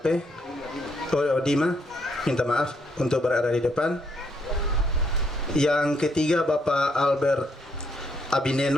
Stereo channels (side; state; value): both; normal; correlation 0.73